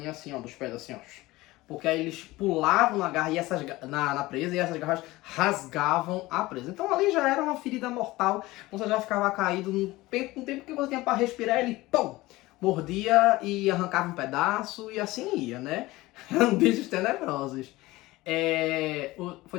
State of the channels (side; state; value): right; quieter; 19.3 dB